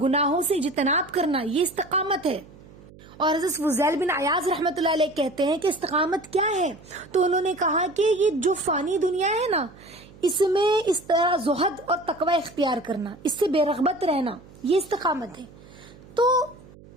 گناہوں سے اجتناب کرنا، یہ استقامت ہے۔ اور حضرت فضیل بن عیاض رحمۃ اللہ علیہ کہتے ہیں کہ استقامت کیا ہے؟ تو انہوں نے کہا کہ یہ جو فانی دنیا ہے نا، اس میں اس طرح زہد اور تقوی اختیار کرنا، اس سے بے رغبت رہنا، یہ استقامت ہے۔ تو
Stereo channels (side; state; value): right; noise; hum, 22 dB below the sound